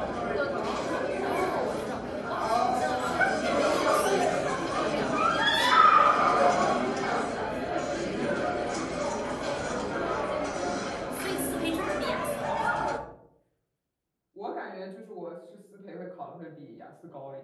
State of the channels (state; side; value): identical; both; correlation 1.00